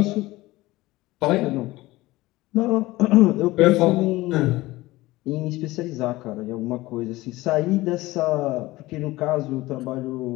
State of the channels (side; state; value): right; quieter; 19.0 dB